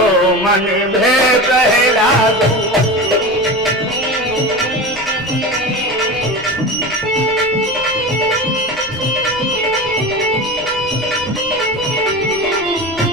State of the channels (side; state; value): left; noise; rumble, 23 dB below the sound